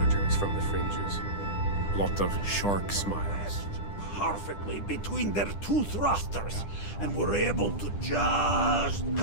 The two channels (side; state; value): right; late; 10 ms